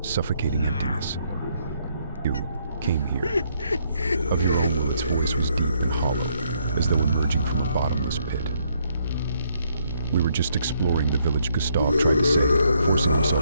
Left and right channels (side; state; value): both; inverted; correlation -0.72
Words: suffocating emptiness. "You came here. Of your own will." Its voice was deep and hollow, as though emerging from a bottomless pit. "We were just exploring the village," Gustav tried to say, forcing